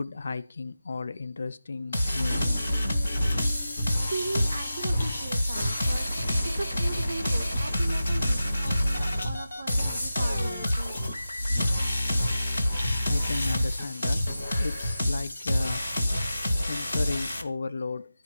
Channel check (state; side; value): inverted; both; correlation -0.93